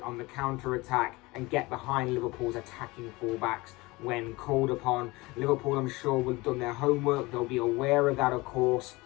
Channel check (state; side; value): quieter; right; 22.6 dB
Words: on the counter-attack and get behind Liverpool's attacking fullbacks when called upon. Liverpool, I'm sure, will have done their homework. They'll be aware of that, of course,